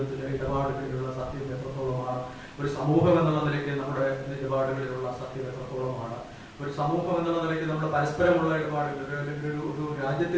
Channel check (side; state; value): both; identical; correlation 1.00